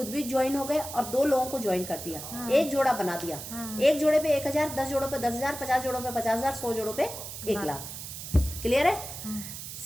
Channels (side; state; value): right; noise; hiss, 9 dB below the sound